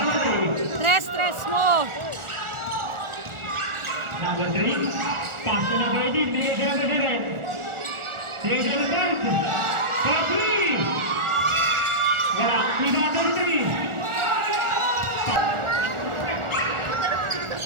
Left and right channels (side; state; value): left; late; 1.4 ms